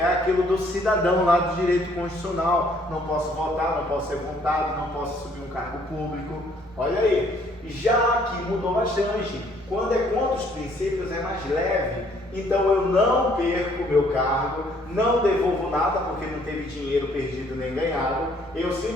aquilo do cidadão lá do direito constitucional. Não posso votar, não posso ser votado, não posso subir um cargo público. Olha aí, já aqui mudou bastante. Quando é contra os princípios é mais leve. Então eu não perco o meu cargo, não devolvo nada porque não teve dinheiro perdido nem ganhado. Eu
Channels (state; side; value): normal; both; correlation 0.63